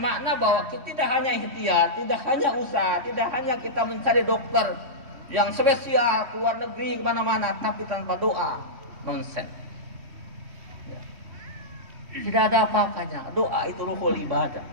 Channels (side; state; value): left; late; 3.1 ms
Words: bahwa kita tidak hanya ikhtiar, tidak hanya usaha, tidak hanya kita mencari dokter yang spesial ke luar negeri kemana-mana, tapi tanpa doa nonsen. Ya. Tidak ada apa-apanya. Doa itu ruhul ibadah.